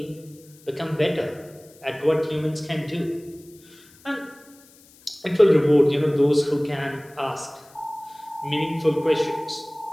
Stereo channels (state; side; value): noise; left; hiss, 26 dB below the sound